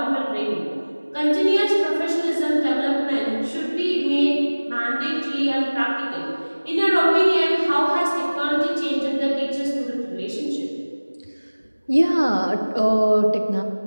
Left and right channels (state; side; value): inverted; both; correlation -1.00